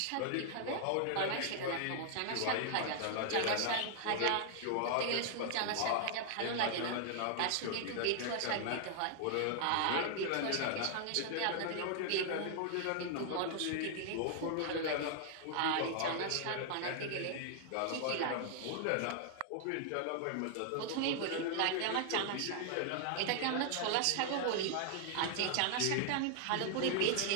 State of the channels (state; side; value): different; both; correlation 0.00